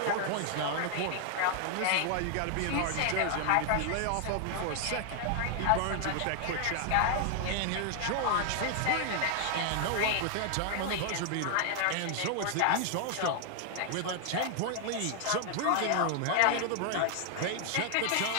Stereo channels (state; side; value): different; both; correlation 0.00